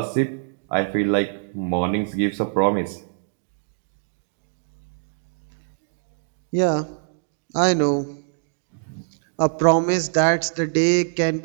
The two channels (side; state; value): left; silent; digital silence